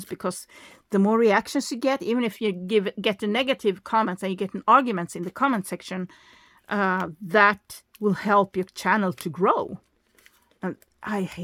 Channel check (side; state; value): both; identical; correlation 1.00